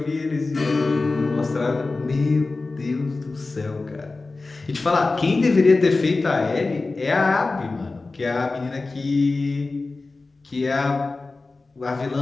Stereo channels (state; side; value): quieter; right; 3.6 dB